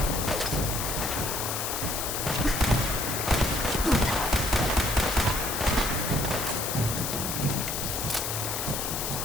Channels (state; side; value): noise; left; hiss, 3 dB below the sound